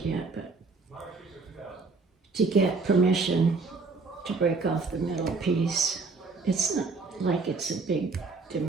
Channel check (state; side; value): quieter; left; 4.1 dB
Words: yet, but to get permission to break off the middle piece. It's not like it's a big